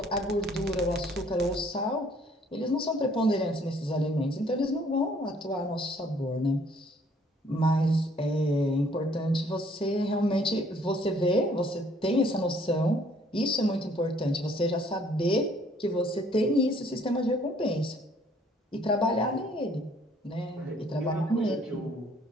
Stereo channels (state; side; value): normal; both; correlation 0.61